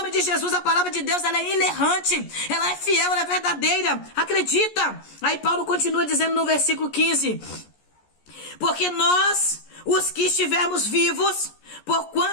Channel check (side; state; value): right; late; 14 ms